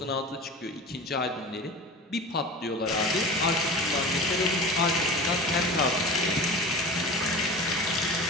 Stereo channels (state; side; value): normal; both; correlation 0.34